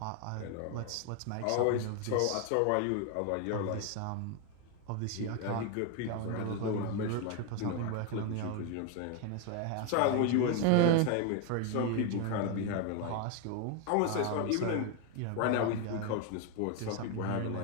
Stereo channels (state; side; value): different; both; correlation 0.01